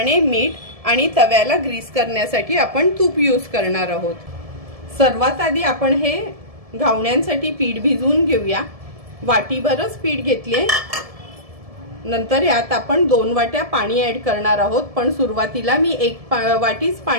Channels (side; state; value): left; late; 1.7 ms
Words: मीठ आणि तव्याला ग्रीस करण्यासाठी आपण तूप यूज करणार आहोत। सर्वात आधी आपण हे घावण्यांसाठी पीठ भिजवून घेऊया। वाटीभरच पीठ घेतले, नंतर यात आपण 2 वाट्या पाणी ऍड करणार आहोत, पण सुरुवातीला मी 1 वाटीच